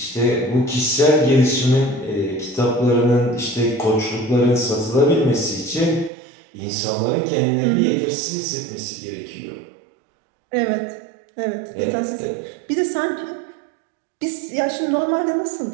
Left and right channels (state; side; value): drops out; left; at 6.1 s